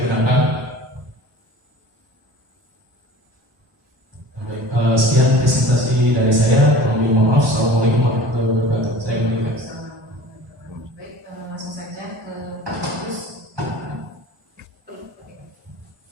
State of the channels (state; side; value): normal; both; correlation 0.42